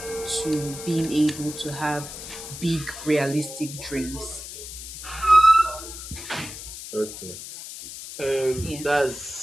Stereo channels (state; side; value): noise; left; hiss, 11 dB below the sound